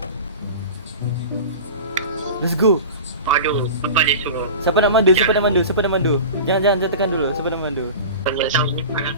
Let's go. Aduh, apa dia suruh? Siapa nak mandu? Siapa nak mandu? Siapa nak mandu? Jangan tekan dulu. Siapa nak mandu? Kita tahu kalau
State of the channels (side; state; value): both; inverted; correlation -0.34